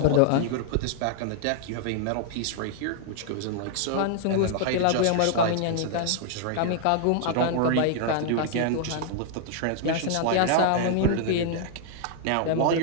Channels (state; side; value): different; both; correlation -0.01